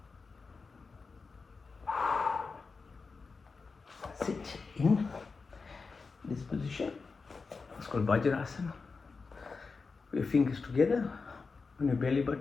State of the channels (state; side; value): quieter; right; 4.5 dB